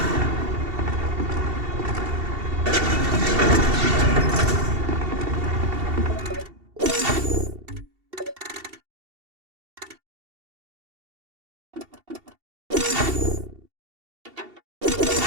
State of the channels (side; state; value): left; late; 2.7 ms